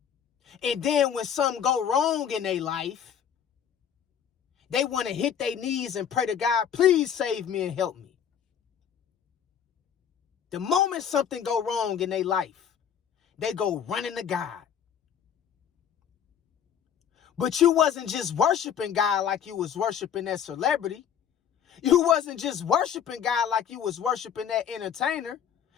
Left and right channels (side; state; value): right; quieter; 8.5 dB